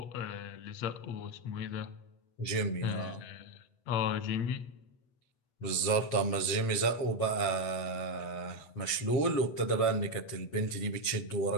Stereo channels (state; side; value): late; right; 8.1 ms